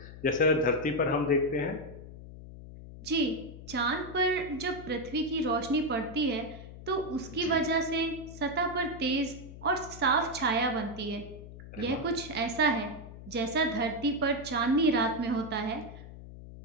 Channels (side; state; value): left; noise; hum, 14 dB below the sound